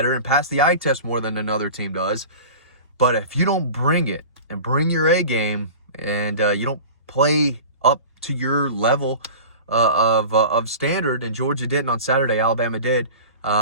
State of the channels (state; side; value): inverted; both; correlation -0.36